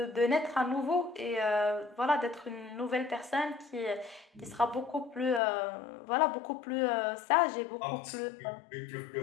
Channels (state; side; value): drops out; right; at 5.4 s